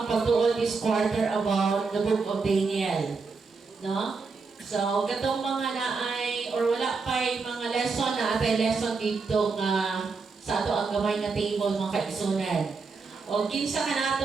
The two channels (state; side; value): quieter; left; 4.5 dB